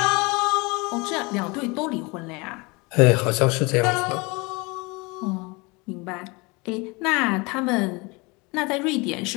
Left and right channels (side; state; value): right; quieter; 26.8 dB